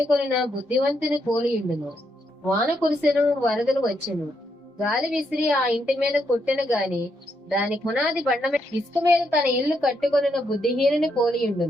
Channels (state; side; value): normal; both; correlation 0.78